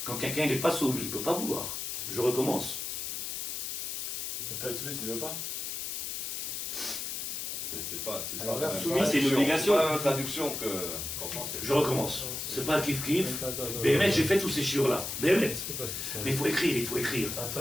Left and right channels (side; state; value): left; noise; hiss, 4 dB below the sound